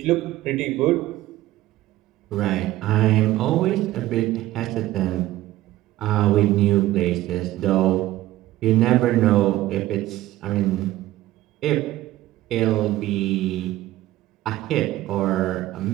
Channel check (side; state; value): left; quieter; 15.6 dB